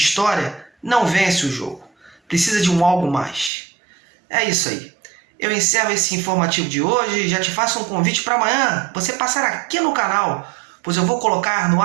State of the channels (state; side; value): drops out; left; at 3.5 s